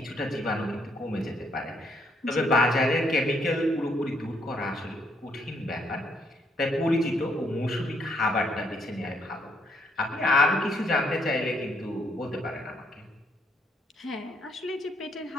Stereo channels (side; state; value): both; normal; correlation 0.72